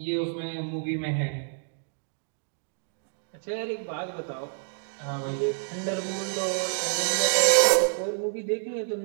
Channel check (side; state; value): left; silent; digital silence